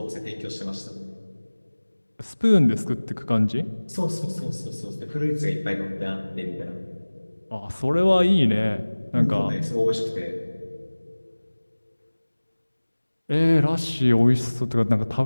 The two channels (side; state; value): both; inverted; correlation -1.00